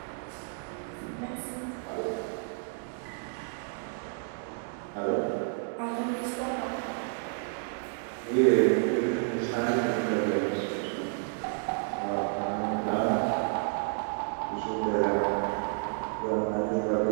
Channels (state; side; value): silent; left; 57 dB below the other